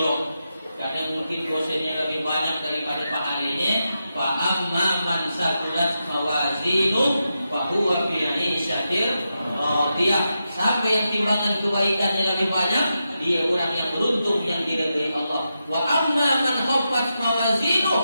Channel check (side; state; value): both; inverted; correlation -0.87